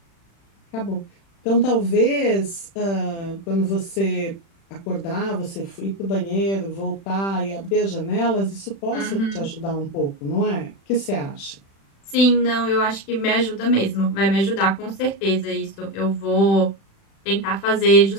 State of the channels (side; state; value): right; late; 36 ms